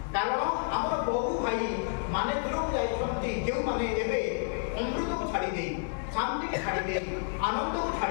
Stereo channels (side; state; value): right; silent; digital silence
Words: কারণ আমার বহু ভাই মানে দূরক যাই যে মানে এবে অমৃতকে ছাড়ি দেই, শান্তিকে ছাড়ি দেই, আনন্দকে